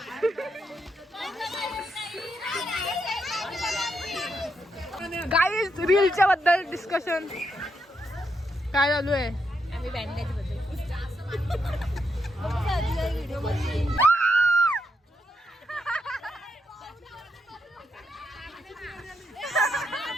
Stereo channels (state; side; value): normal; both; correlation 0.81